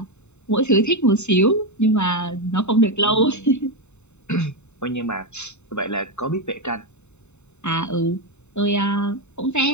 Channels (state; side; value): late; right; 0.82 ms